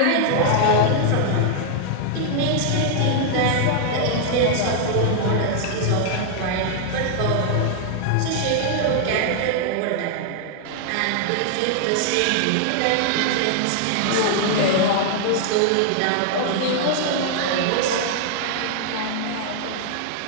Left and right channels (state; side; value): different; both; correlation 0.00